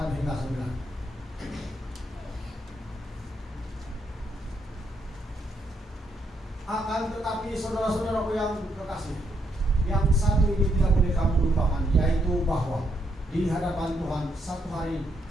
hingga 9. Akan tetapi saudara-saudaraku yang kekasih, yang satu ini tidak boleh kamu lupakan, yaitu bahwa di hadapan Tuhan satu hari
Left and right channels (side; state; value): both; normal; correlation 0.76